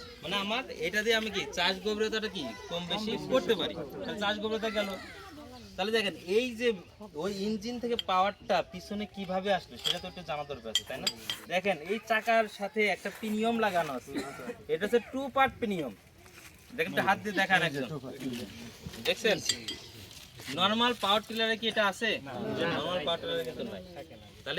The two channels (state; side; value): identical; both; correlation 1.00